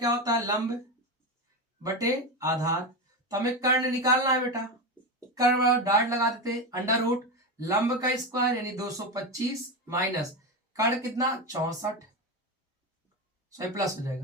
होता है लंब बटे आधार, तो हमें कर्ण निकालना है बेटा, कर्ण डाट लगा देते अंडर रूट लंब का स्क्वायर यानी 225 माइनस कर्ण कितना 64, सो प्लस हो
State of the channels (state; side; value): normal; both; correlation 0.16